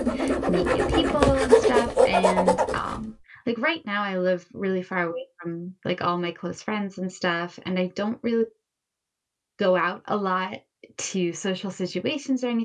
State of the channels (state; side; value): identical; both; correlation 1.00